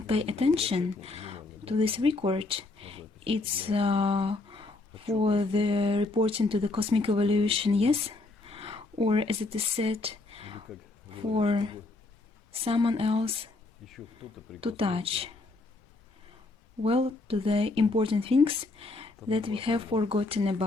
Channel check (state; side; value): quieter; right; 3.3 dB